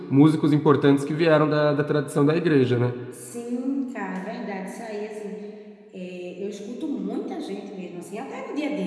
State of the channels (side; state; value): both; identical; correlation 1.00